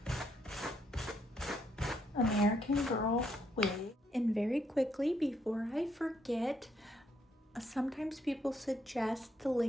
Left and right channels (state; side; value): normal; both; correlation 0.74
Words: American Girl wig. And very quickly, before I forget, sometimes people suggest the